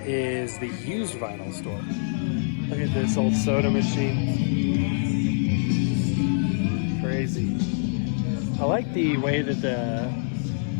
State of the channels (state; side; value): silent; right; digital silence